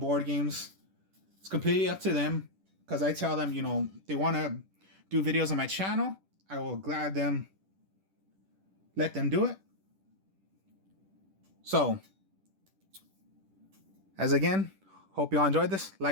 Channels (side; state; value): left; late; 10 ms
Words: games. It's completely up to them, because I tell them, you know, they want to do videos on my channel. I will let them do it. So, As again, hope you all enjoyed this.